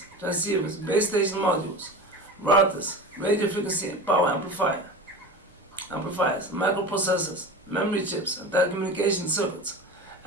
transceivers, base station modules, routers, radio frequency and power amplifiers, microprocessors, memory chips, and telecommunication circuits.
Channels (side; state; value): both; normal; correlation 0.32